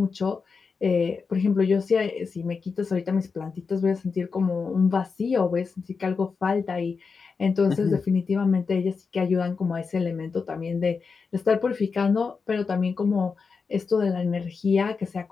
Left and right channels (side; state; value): right; quieter; 5.1 dB